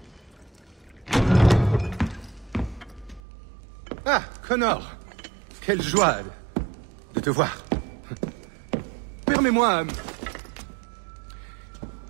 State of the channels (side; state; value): left; drops out; at 3.2 s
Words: Ah, Connor! Quelle joie de te voir. Permets-moi